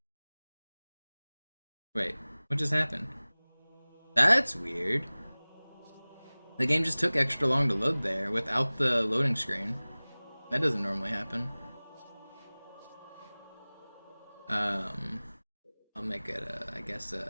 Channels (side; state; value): both; inverted; correlation -1.00